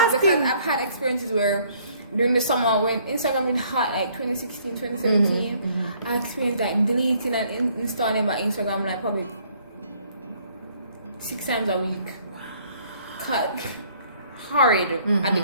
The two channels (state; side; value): inverted; both; correlation -0.62